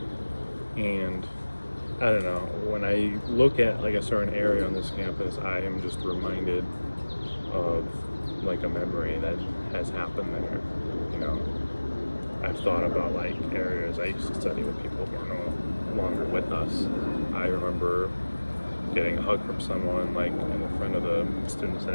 and I don't know, when I look at like a certain area on this campus, I am just reminded of like a memory that has happened there. You know, I've thought about like areas I used to study with people who are no longer with us. I remember getting a hug from someone like in the front of the Student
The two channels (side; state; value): both; inverted; correlation -1.00